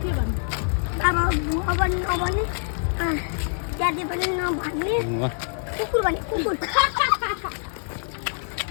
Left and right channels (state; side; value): silent; right; digital silence